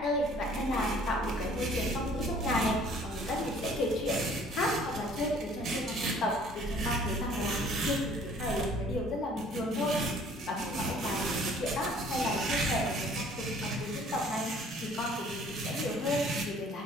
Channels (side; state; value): both; normal; correlation 0.55